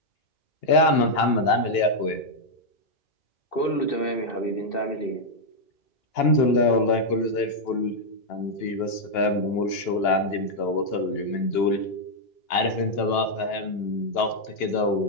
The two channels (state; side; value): late; right; 2.9 ms